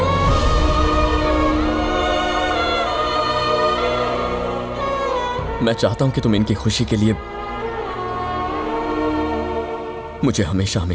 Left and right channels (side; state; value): both; identical; correlation 1.00